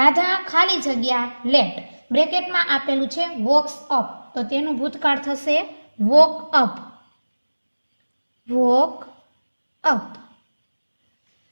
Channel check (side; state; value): both; inverted; correlation -1.00